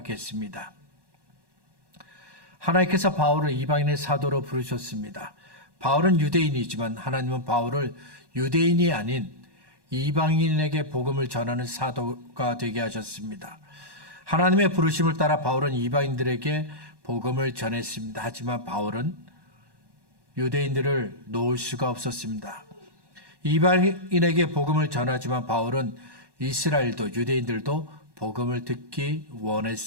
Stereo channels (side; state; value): left; late; 1.1 ms